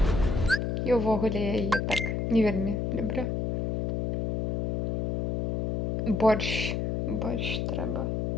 І ўвогуле я яе так не вельмі люблю. Борщ трэба.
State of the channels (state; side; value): noise; left; hum, 1 dB below the sound